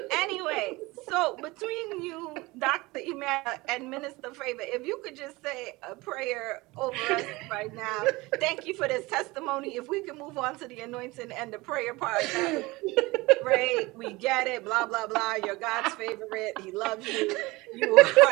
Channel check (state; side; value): quieter; left; 22.0 dB